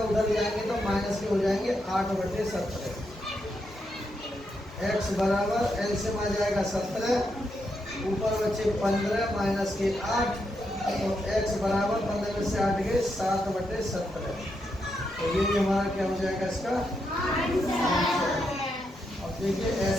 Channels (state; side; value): normal; both; correlation 0.82